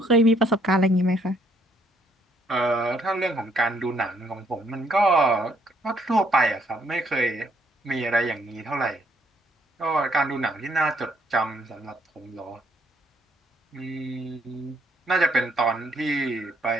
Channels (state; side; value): normal; both; correlation 0.69